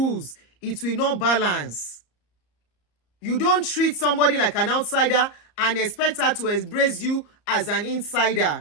it will not balance. You don't treat somebody like an outsider and expect her to embrace you as an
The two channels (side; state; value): right; late; 34 ms